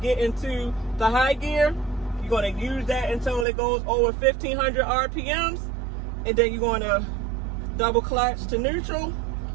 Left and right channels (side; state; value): left; drops out; at 3.5 s